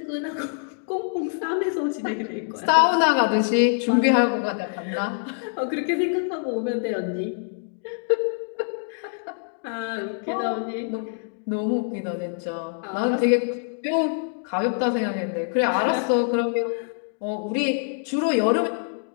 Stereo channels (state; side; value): silent; right; digital silence